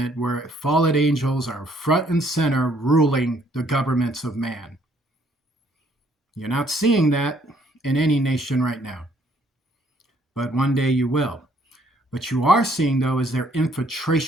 where fallen angels are front and center ruling the governments of man. You're not seeing that in any nation right now. But one day you will. What you are seeing, though, is their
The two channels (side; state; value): both; normal; correlation 0.65